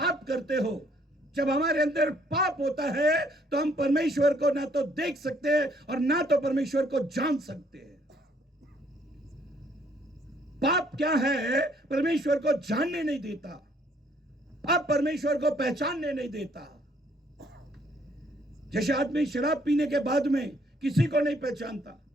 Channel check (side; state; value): both; normal; correlation 0.65